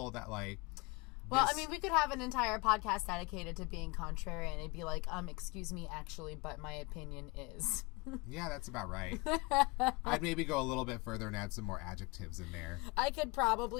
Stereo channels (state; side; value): quieter; right; 26.6 dB